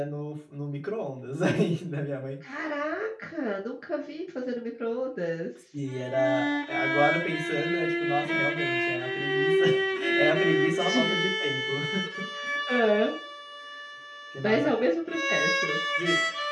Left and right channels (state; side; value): identical; both; correlation 1.00